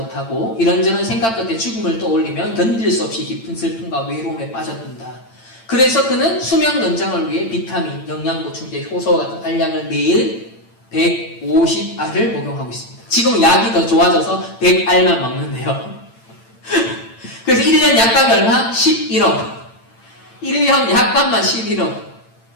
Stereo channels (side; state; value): right; late; 8.9 ms